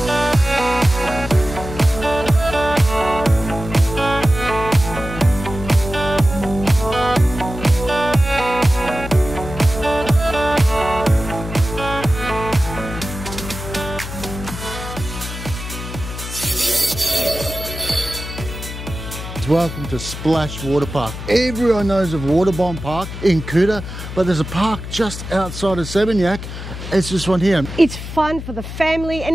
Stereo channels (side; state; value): left; noise; hum, 9 dB below the sound